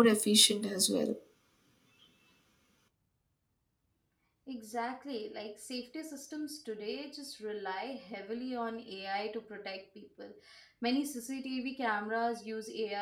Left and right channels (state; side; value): identical; both; correlation 1.00